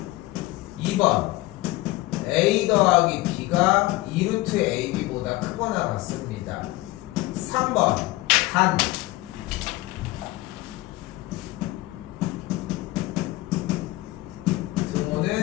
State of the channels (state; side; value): quieter; right; 19.2 dB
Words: 2번 A 더하기 B가 2루트 AB보다 크거나 같습니다. 3번 단